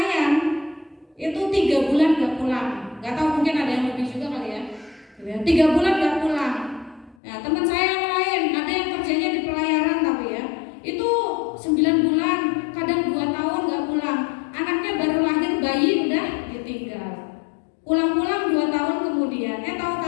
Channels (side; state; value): right; drops out; at 7.2 s